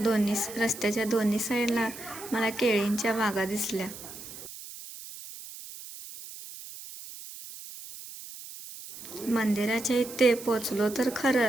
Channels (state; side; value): noise; right; hiss, 13 dB below the sound